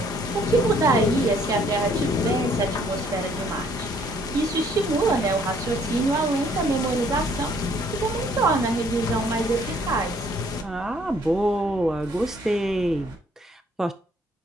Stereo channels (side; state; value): both; normal; correlation 0.63